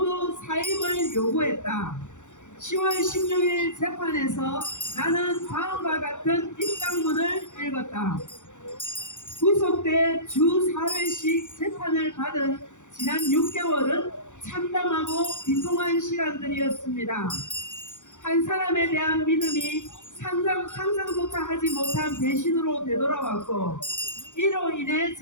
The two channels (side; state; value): right; late; 0.85 ms